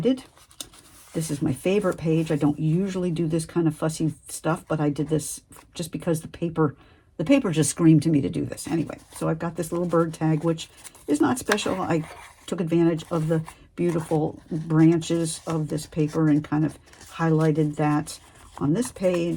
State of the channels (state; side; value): identical; both; correlation 1.00